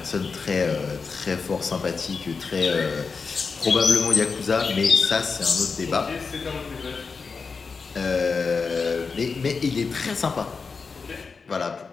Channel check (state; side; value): quieter; right; 4.9 dB